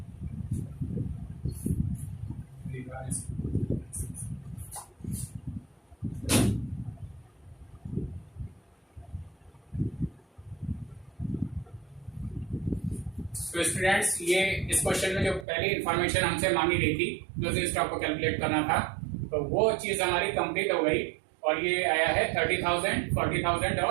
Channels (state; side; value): drops out; left; at 15.5 s